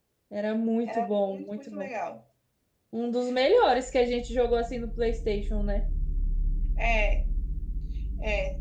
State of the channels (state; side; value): identical; both; correlation 1.00